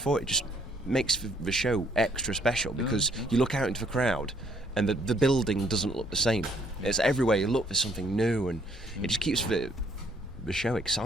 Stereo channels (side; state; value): both; normal; correlation 0.66